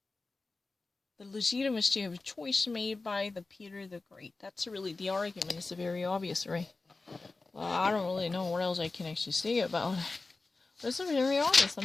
the legitimacy of a choice made by the Peter the Great. That's really the argument. It's very obvious, right? Well, I don't really know what else I can actually say about it. But it's very obvious. I'm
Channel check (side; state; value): right; quieter; 3.6 dB